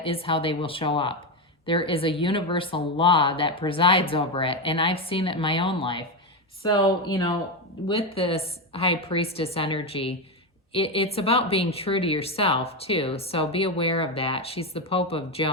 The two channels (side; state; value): both; normal; correlation 0.11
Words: is how they will show up. There is a universal law that presides over it, and I've seen it in my own life. So, with this high priestess energy, it's about being true to yourself too. So be aware of that. She's the Pope of